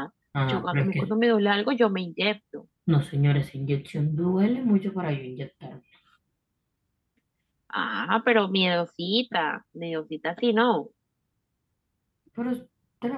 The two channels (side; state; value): both; identical; correlation 1.00